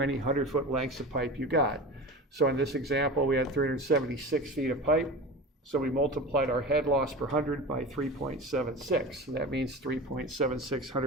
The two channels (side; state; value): both; normal; correlation 0.31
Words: 100-foot lengths of pipe you got. So in this example, we had 376 feet of pipe. So we multiplied our head loss per 100 by 3.76. So that means 3.76